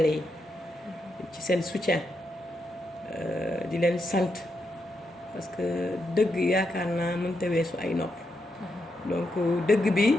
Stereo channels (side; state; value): both; normal; correlation 0.83